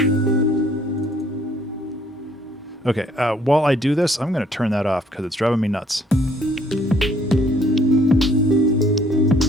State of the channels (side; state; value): both; normal; correlation 0.63